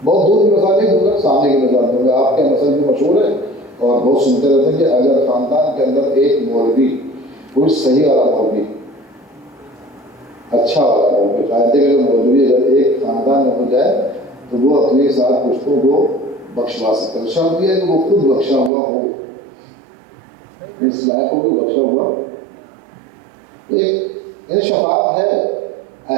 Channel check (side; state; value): left; drops out; at 18.7 s